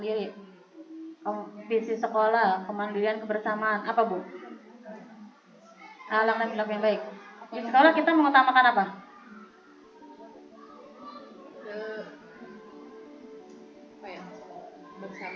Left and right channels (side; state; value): both; identical; correlation 1.00